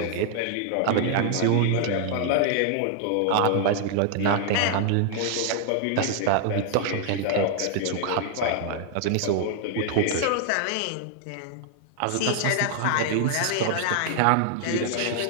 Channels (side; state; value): both; different; correlation 0.00